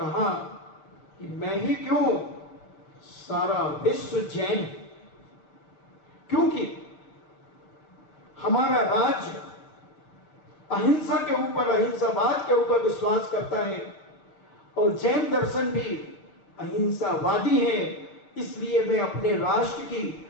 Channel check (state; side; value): late; right; 6.6 ms